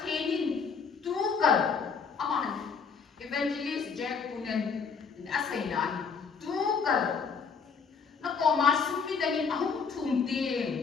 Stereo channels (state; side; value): quieter; right; 5.7 dB